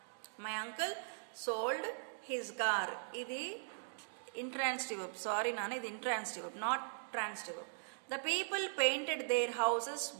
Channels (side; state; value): left; silent; digital silence